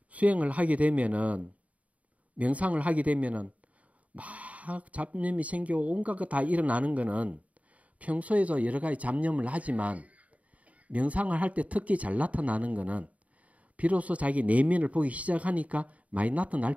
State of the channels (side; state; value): left; late; 0.068 ms